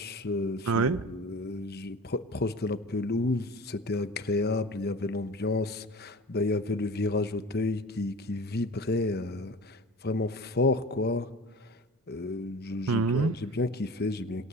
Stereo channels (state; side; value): normal; both; correlation 0.38